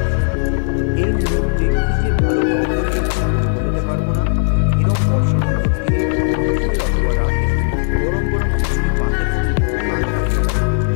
এই মুহূর্তে কী যে ভালো গন্ধ বেরোচ্ছে বলে বোঝাতে পারবো না। এরম বর্ষণ মুখর দিনে দুপুরে অথবা রাতে গরম গরম খিচুড়ি পাতে পড়লে কার না ভালো লাগে।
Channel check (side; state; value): right; silent; digital silence